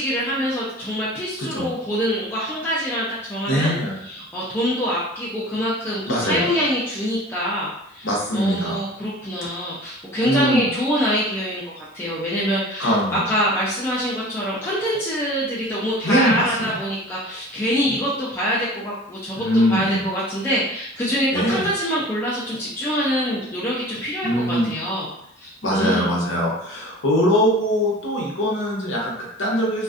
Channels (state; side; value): normal; both; correlation 0.41